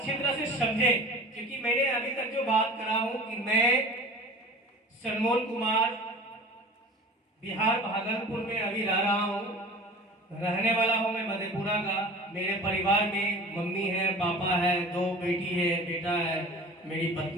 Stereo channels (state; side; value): normal; both; correlation 0.39